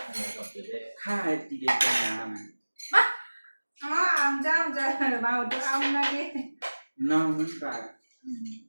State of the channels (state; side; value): inverted; both; correlation -1.00